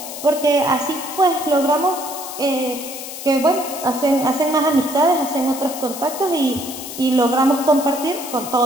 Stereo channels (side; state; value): left; noise; hiss, 10 dB below the sound